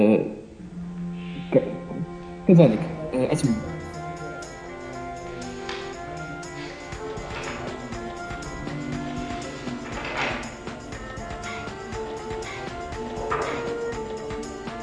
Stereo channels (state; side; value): identical; both; correlation 1.00